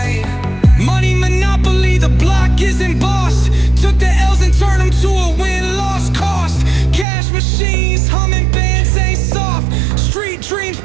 Money monopoly, the block isn't bossed. Took the L's and turned them to a win-loss cost. Cash machines, humming bands ain't soft. Street dreams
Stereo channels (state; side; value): drops out; left; at 7.1 s